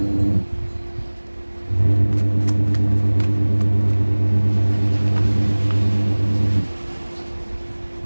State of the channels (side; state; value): both; inverted; correlation -1.00